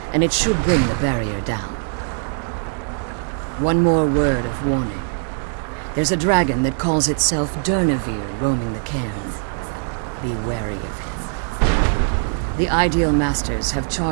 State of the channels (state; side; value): silent; left; 62 dB below the other